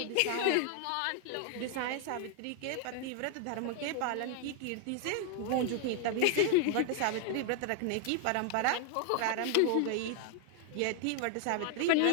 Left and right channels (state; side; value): different; both; correlation 0.00